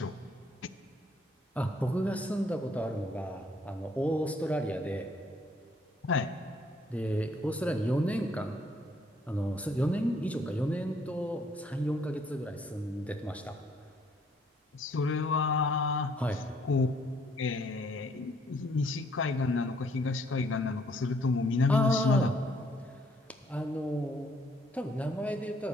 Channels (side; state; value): both; normal; correlation 0.66